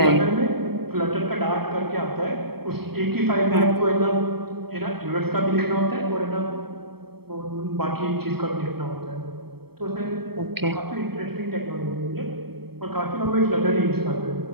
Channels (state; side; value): late; left; 0.96 ms